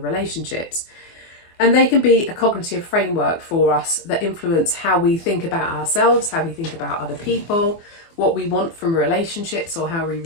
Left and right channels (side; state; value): right; late; 24 ms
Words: And they can be a cognitive framework for us that influence how we think about ourselves, how we think about other people, what we want from relationships, or how we